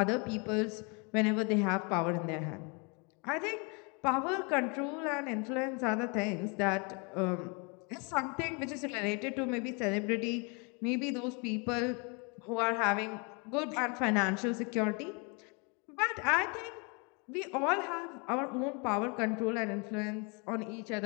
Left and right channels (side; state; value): right; quieter; 32.6 dB